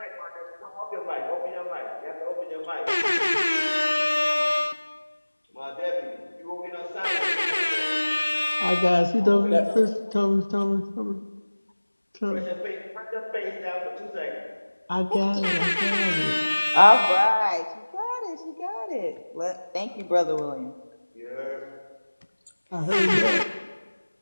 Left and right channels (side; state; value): both; inverted; correlation -1.00